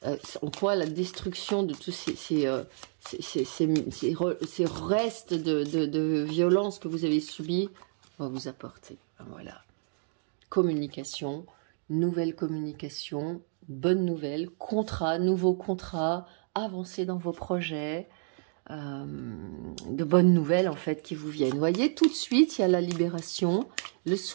en quoi la destruction de tous ces restes de violence que vous avez subis va vous apporter. Voilà. Communication, nouvelle communication, bonne nouvelle, contrat, nouveau contrat, avancez dans vos projets, de bonnes nouvelles en fait qui vous viennent. Vous voyez, tout de suite, il y a la libération. Le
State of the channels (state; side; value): silent; left; 55 dB below the other